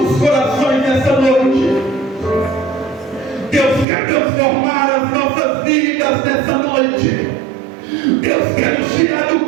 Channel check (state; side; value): drops out; left; at 3.9 s